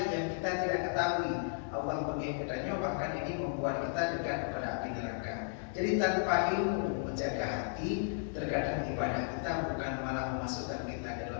yang kita tidak ketahui Allah mengingatkannya, bahkan ini membuat kita dekat kepada api neraka. Jadi tanpa ilmu menjaga hati, terkadang ibadah kita bukan malah memasukkan kita ke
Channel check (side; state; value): right; silent; digital silence